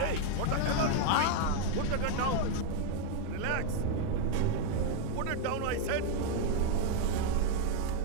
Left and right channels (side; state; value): both; different; correlation 0.01